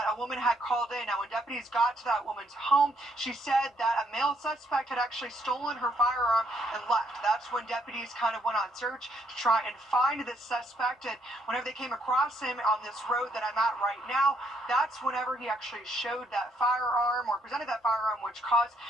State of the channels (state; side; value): normal; both; correlation 0.71